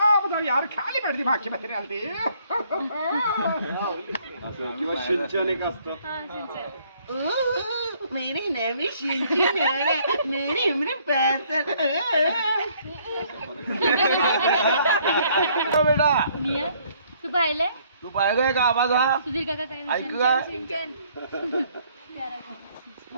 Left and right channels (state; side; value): inverted; both; correlation -0.64